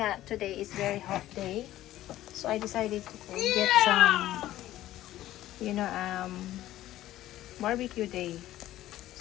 today is very hot day. So, I decided to get some, barbecue day.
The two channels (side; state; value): right; quieter; 14.4 dB